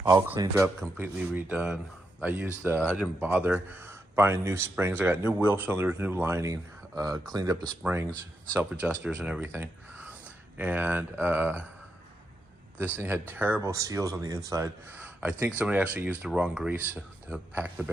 all cleaned up, completely redone. I didn't bother buying new springs. I got new wheel cylinders, new lining, cleaned up the springs, self-adjusters and everything. And this thing had terrible seals on the inside. I think somebody actually used the wrong grease to pack the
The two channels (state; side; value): normal; both; correlation 0.83